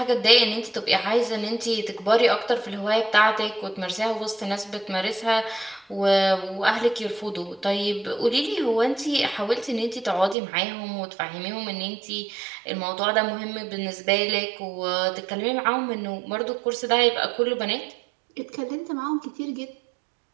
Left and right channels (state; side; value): drops out; left; at 10.4 s